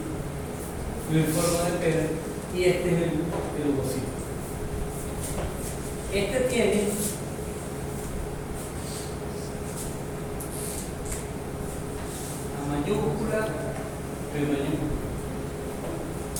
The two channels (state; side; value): identical; both; correlation 1.00